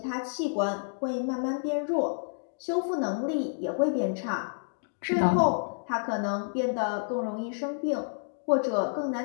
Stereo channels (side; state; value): right; silent; digital silence